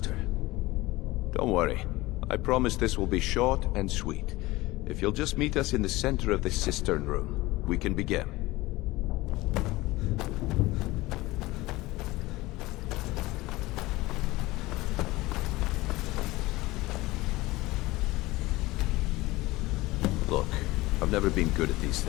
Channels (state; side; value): quieter; right; 19.8 dB